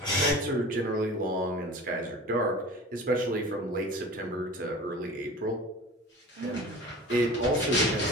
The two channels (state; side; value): normal; both; correlation 0.38